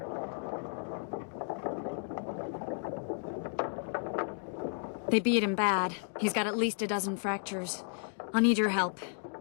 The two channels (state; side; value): silent; right; 55 dB below the other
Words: They beat him bad. He's got at least a dozen fractures. I'll need your help.